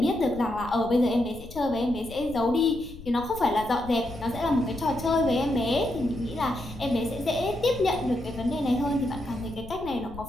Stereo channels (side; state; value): left; noise; rumble, 15 dB below the sound